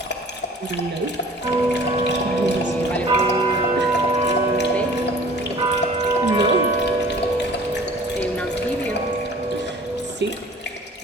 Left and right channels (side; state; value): both; normal; correlation 0.48